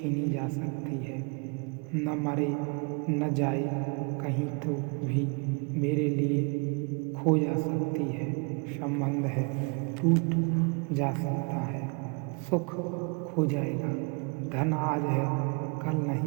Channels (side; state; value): left; quieter; 34.6 dB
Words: जा सकती है, न मरे न जाए कहीं तो भी मेरे लिए खो जा सकती है। संबंध है, टूट जा सकता है, सुख खो जाएगा, धन आज है कल